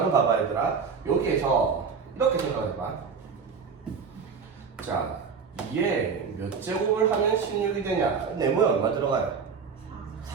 봐봐 얘들아. 여기에서 이렇게 생각해봐. 자, 2에 몇 제곱을 하면 16이 되냐? 네모에 얼마 들어가요?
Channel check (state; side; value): quieter; left; 5.8 dB